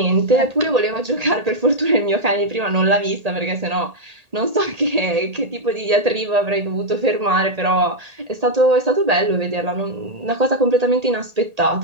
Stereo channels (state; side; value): late; left; 1.8 ms